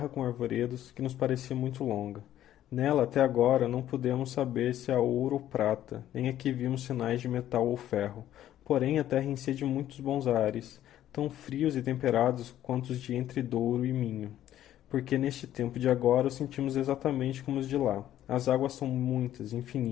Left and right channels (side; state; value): right; quieter; 12.2 dB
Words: com arvoredos, que nos parecia muito longa. Nela, até agora, não pudemos saber se há ouro ou prata, nem aqui vimos sinais de metal ou ferro. Porém, a terra enchia de muitos bons ares, tão frios e temperados quanto os de entre Douro e Minho, porque neste tempo de agora os sentimos exatamente como os de lá. As águas são muitas,